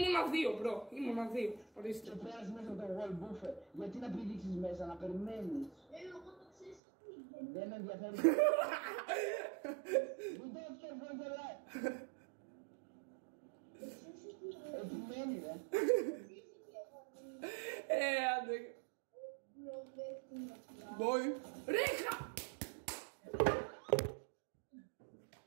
2 μπρο, ήμουνα 2. Ορίστε. Και πέρασε μέσα από το wall buffer. Γιατί να πηδήξεις μέσα, να περιμένεις. Εγώ το ξέρεις τι. Δεν με ενδιαφέρει. We don't care for the life. Επιμένει ρε. Άντε. Boy. Ρέχα!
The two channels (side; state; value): left; drops out; at 6.8 s